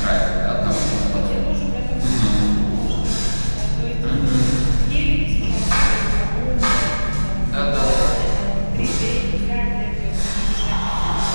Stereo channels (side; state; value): both; inverted; correlation -1.00